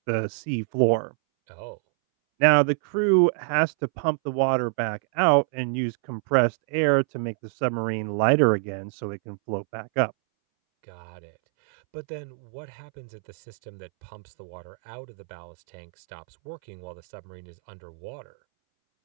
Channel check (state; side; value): silent; left; 61 dB below the other